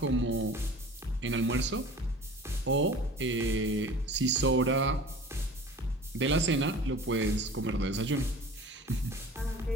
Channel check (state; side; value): normal; both; correlation 0.41